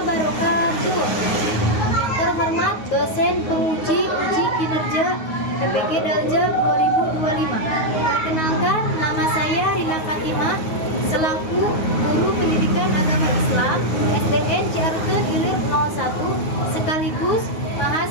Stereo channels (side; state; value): right; late; 9.4 ms